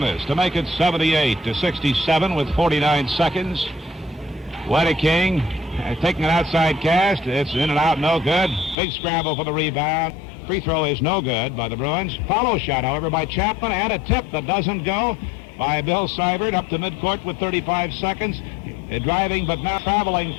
to make it 78-67 with 49 seconds. Wedeking taking an outside cast. It's in and out, no good. Big scramble for the rebound. Free throw is no good by the Bruins. Follow shot, however, by Chapman, and a tip that doesn't go by Bill Seibert up to midcourt with 35 seconds. Driving, but now traveling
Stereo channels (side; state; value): right; drops out; at 8.8 s